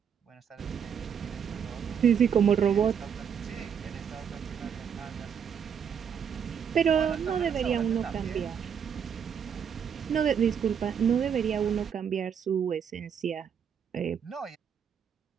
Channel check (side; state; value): left; quieter; 7.6 dB